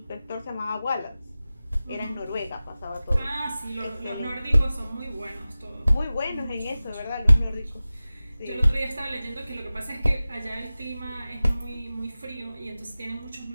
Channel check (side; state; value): both; inverted; correlation -0.96